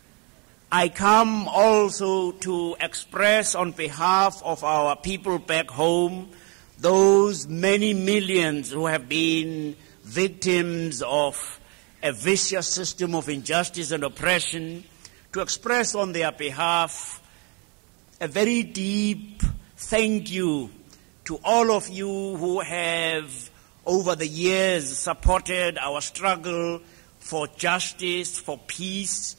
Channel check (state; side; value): quieter; left; 32.3 dB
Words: I come also to express on behalf of our people back home, those many millions who have been victims of a vicious system of injustice and oppression, to express on their behalf a very deep thank you to all of you who have over the years supported our struggle for justice, for peace,